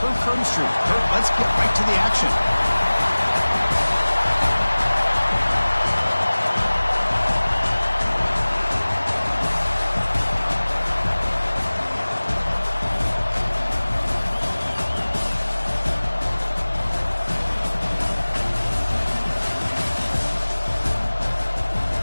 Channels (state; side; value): inverted; both; correlation -1.00